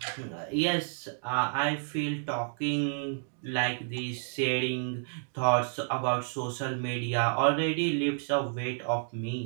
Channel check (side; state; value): left; silent; digital silence